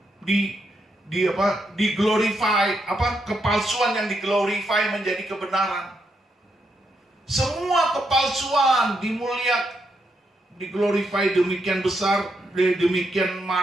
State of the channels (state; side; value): normal; both; correlation 0.80